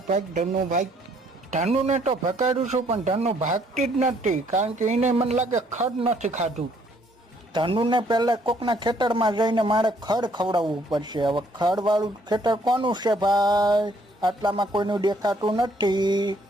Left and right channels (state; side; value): normal; both; correlation 0.65